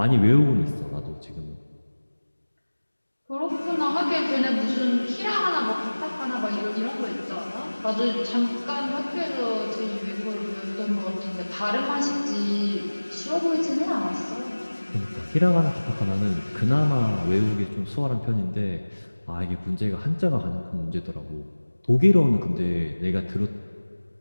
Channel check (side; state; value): both; inverted; correlation -1.00